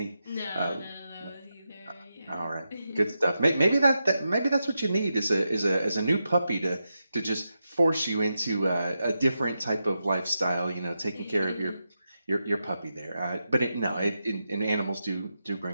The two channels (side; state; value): both; inverted; correlation -0.88